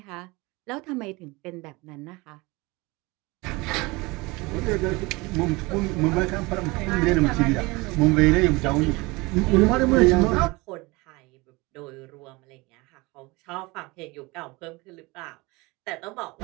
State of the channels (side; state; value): left; quieter; 24.0 dB